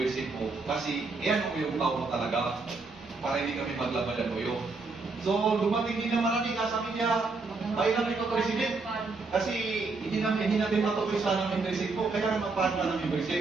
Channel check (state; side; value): quieter; left; 3.9 dB